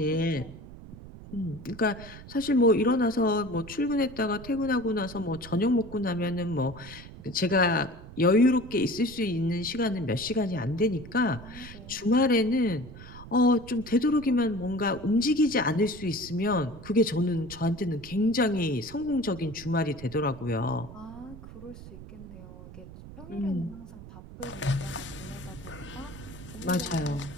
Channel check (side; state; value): right; noise; rumble, 15 dB below the sound